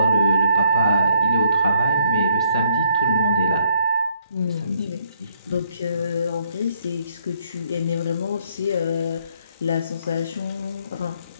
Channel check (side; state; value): both; inverted; correlation -0.69